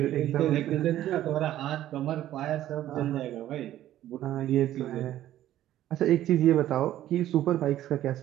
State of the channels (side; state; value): left; quieter; 13.0 dB